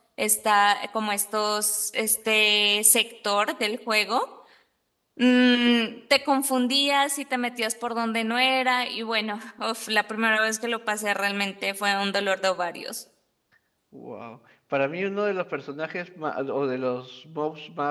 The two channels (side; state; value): both; identical; correlation 1.00